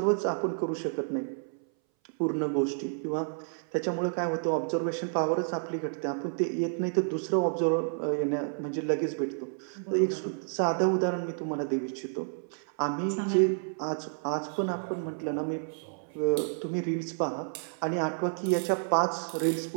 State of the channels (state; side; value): silent; left; 58 dB below the other